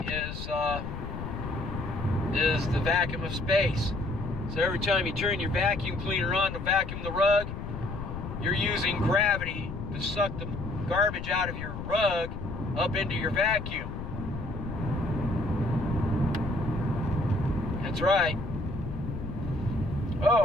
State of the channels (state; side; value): noise; left; rumble, 7 dB below the sound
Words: is the vacuum of space. So every time you turn your vacuum cleaner on to vacuum the rug, you're using gravity to suck the garbage out of your rug up into your vacuum. That's right.